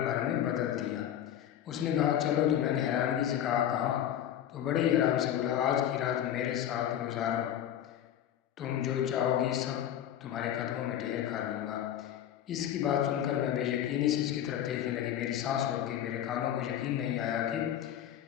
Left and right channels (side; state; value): right; quieter; 10.8 dB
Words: بھر میں بدل دیا۔ اس نے کہا، چلو، تو میں نے حیرانگی سے کہا، تو بڑے ہی آرام سے بولا، آج کی رات میرے ساتھ گزارو، تم جو چاہو گی سب تمہارے قدموں میں ڈھیر کر دوں گا۔ اس کی بات سن کر میں بے یقینی سے اس کی طرف دیکھنے لگی۔ میری سانس رک گئی، میرے کانوں کو یقین نہیں آیا کہ